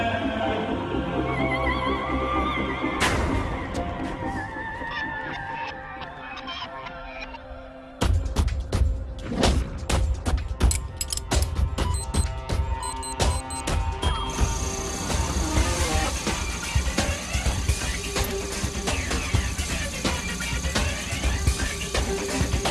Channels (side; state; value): both; identical; correlation 1.00